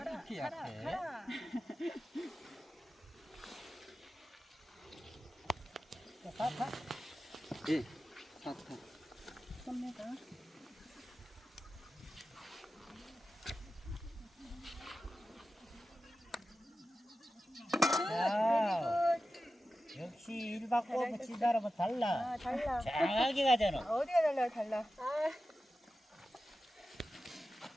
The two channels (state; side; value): normal; both; correlation 0.93